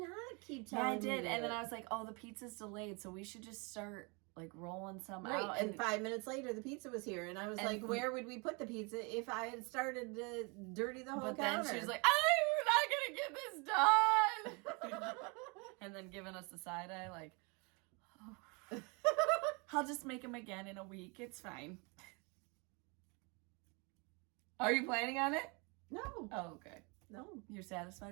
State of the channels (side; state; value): left; quieter; 30.9 dB